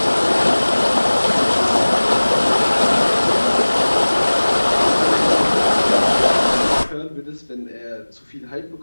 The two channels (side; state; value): both; inverted; correlation -1.00